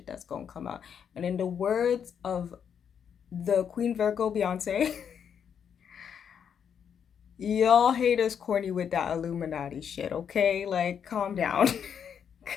that's gonna come out. And in the words of the Queen Virgo Beyonce, y'all haters corny with that Illuminati shit, okay? Like, calm down.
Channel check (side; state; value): right; quieter; 7.8 dB